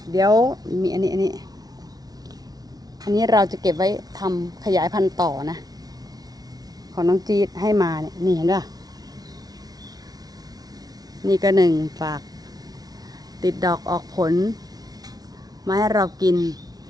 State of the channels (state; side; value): late; left; 0.19 ms